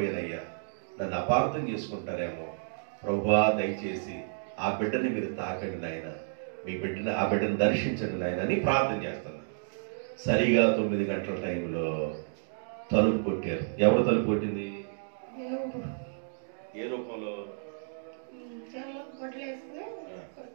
నన్ను అపార్థం చేసుకుంటారేమో. ప్రభువా, దయచేసి ఆ బిడ్డని మీరు తాకండి నాయన, ఆ బిడ్డను దర్శించండి నాయన అని ప్రార్థన చేస్తున్నా. సరిగా 9 గంటల టైంలో తలుపు కొట్టారు. ఎవరు తలుపు కొట్టింది? ఏ రూపంలో?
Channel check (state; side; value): silent; left; digital silence